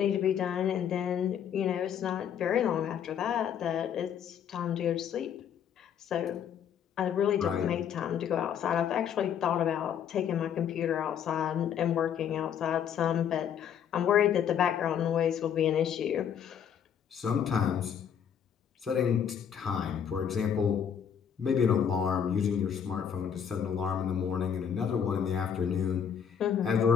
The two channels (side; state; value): right; quieter; 8.3 dB